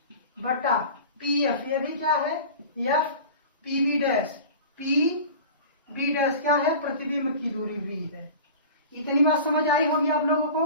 बटा पीएफ ये भी क्या है F, PV dash P B dash क्या है, प्रतिबिंब की दूरी वी है। इतनी बात समझ आई होगी आप लोगों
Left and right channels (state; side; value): inverted; both; correlation -0.37